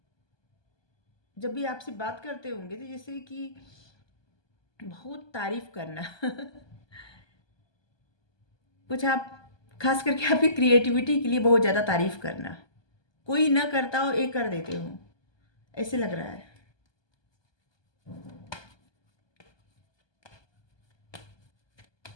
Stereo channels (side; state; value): right; late; 1.2 ms